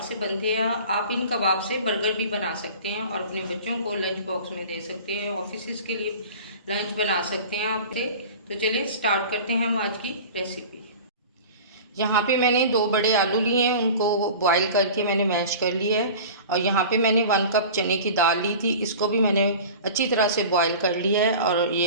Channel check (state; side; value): inverted; both; correlation -0.38